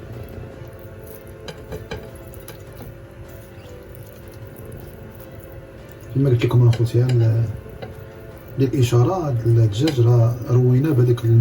كما قلت لكم اخوتي للاشاره، هاد الدجاج راه رويناه بهذاك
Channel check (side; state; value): both; identical; correlation 1.00